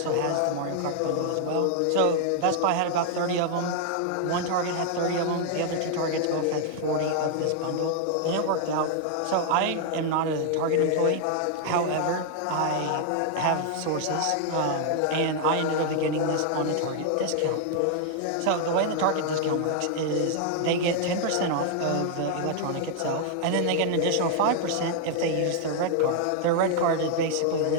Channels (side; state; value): both; different; correlation 0.00